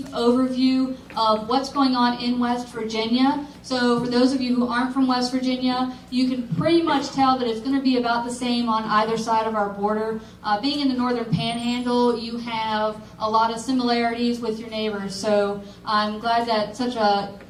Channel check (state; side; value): identical; both; correlation 1.00